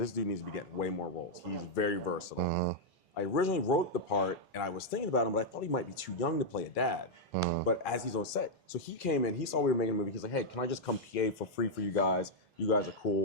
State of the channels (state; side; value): normal; both; correlation -0.03